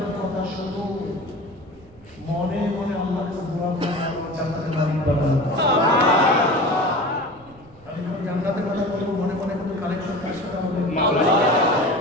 কথা শোনো, মনে মনে আল্লাহর কাছে দোয়া করো, জান্নাতের মালিক বানাও। আমি যখন জান্নাতের কথা বলবো, মনে মনে কোনো কালেকশন কার সাথে হবে? আমি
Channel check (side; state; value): right; noise; rumble, 25 dB below the sound